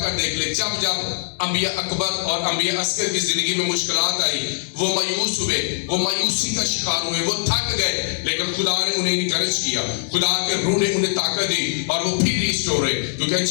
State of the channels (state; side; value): silent; right; digital silence